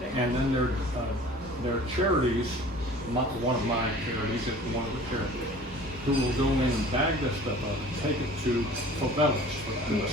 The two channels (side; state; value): both; normal; correlation 0.46